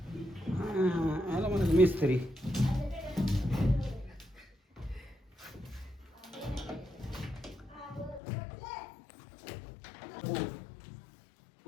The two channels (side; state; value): right; drops out; at 8.2 s